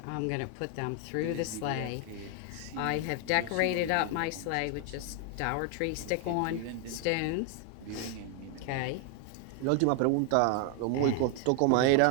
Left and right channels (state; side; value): different; both; correlation 0.00